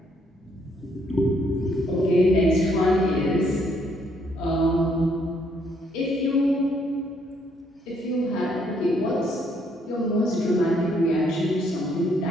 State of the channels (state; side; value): normal; both; correlation 0.69